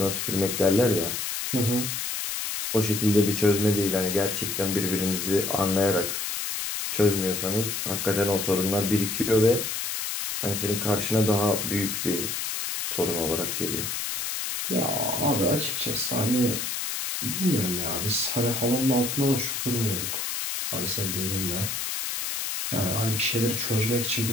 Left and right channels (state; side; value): noise; left; hiss, 3 dB below the sound